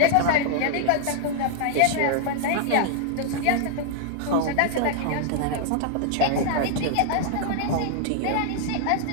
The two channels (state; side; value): different; both; correlation 0.00